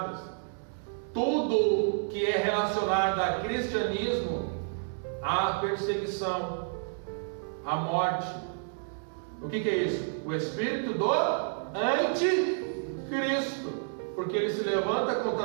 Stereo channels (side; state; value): left; silent; digital silence